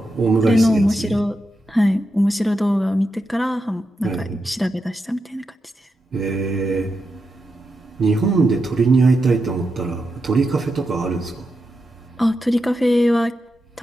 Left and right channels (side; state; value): both; normal; correlation 0.87